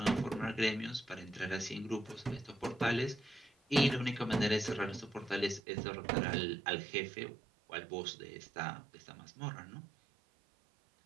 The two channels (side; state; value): left; drops out; at 5.6 s